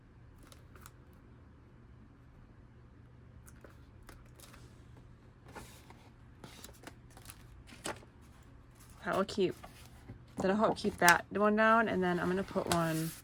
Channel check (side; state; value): both; identical; correlation 1.00